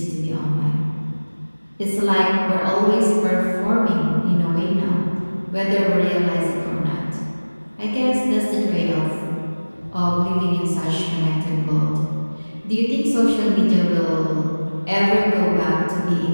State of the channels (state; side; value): inverted; both; correlation -1.00